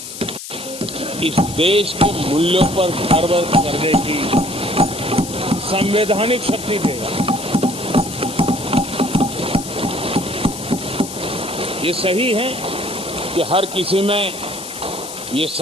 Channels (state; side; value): noise; left; hiss, 10 dB below the sound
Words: इस देश के मूल्यों पर गर्व करने की संवैधानिक शक्ति देगा। ये सही है कि हर किसी में ये